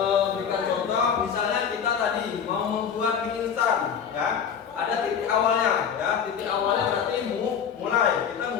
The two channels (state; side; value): quieter; right; 7.5 dB